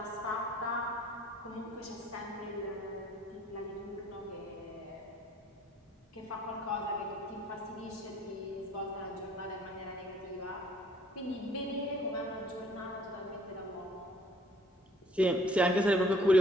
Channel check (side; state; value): both; normal; correlation 0.58